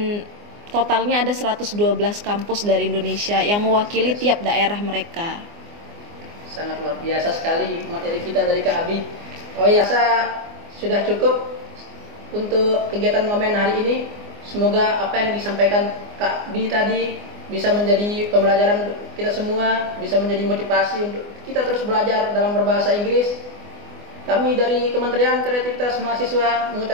totalnya ada 112 kampus dari Indonesia yang mewakili tiap daerah mereka. Sangat luar biasa sekali materi kita dari Kak Abi. Oh ya, saya sudah cukup untuk kegiatan ngomen hari ini. Semoga apa yang disampaikan Kak Bi tadi bisa menjadi pembelajaran untuk kita semua, bisa menjadi motivasi untuk kita terus belajar dalam berbahasa Inggris. Kami dari Kementerian Kreativitas Mahasiswa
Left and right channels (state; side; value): late; left; 24 ms